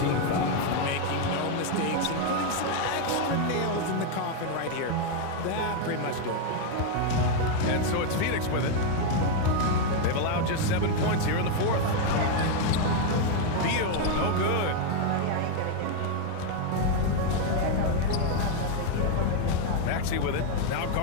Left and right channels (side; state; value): both; different; correlation 0.01